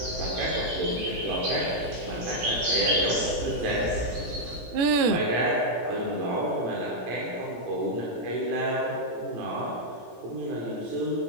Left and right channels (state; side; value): late; left; 17 ms